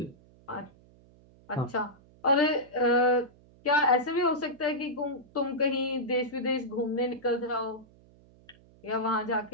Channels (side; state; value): right; noise; hum, 27 dB below the sound